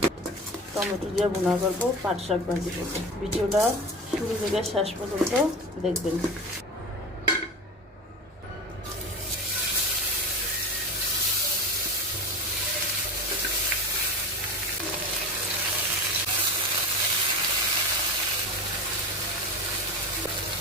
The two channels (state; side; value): normal; both; correlation 0.28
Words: টমেটো দিয়ে ভুনা করবো, পাট শাক ভাজি করবো। ভিডিওটা শুরু থেকে শেষ পর্যন্ত দেখবেন।